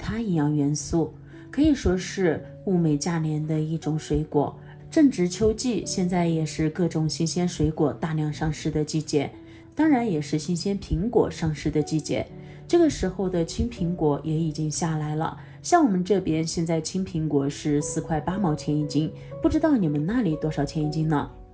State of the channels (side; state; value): both; identical; correlation 1.00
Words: 营养元素，可以说是物美价廉的一种水果。正值秋季，现在也是各种新鲜水果大量上市的季节，当然也是新鲜苹果上市的季节。这个时候的青苹果也已经下来了，像我们这边现在青苹果是4块8毛钱一斤，不知道你们那里多少钱一斤呢？